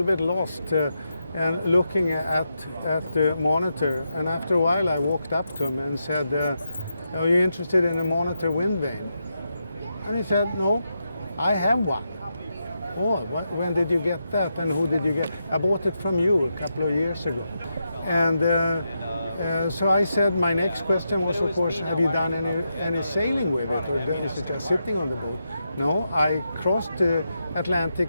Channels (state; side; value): inverted; both; correlation -0.85